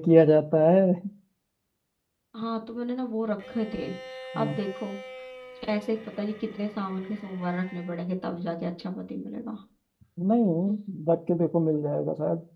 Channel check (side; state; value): both; identical; correlation 1.00